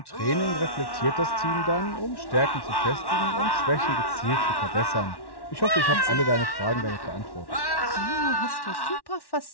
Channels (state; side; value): late; right; 1.1 ms